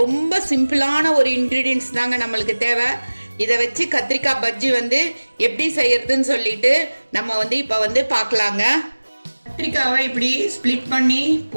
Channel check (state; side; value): inverted; both; correlation -1.00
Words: சிம்பிளான ஒரு இன்க்ரீடியன்ஸ் தாங்க நம்மளுக்கு தேவை. இதை வச்சு கத்திரிக்காய் பஜ்ஜி வந்து எப்படி செய்யறதுன்னு சொல்லிட்டு நம்ம வந்து இப்போ வந்து பார்க்கலாங்க. கத்திரிக்காவை இப்படி ஸ்ப்ளிட் பண்ணி